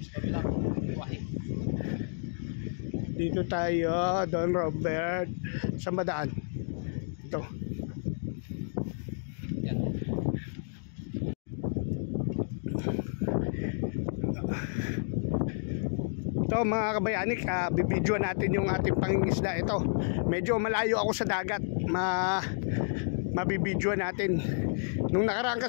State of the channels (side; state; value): right; silent; digital silence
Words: Dito tayo, Don Robert. Saan ba daan? Ito. Ito mga kabayanik, bibidyoan natin yung ating pangingisda. Ito, medyo malayo ako sa dagat. Mabibidyoan natin. Nung nakaraan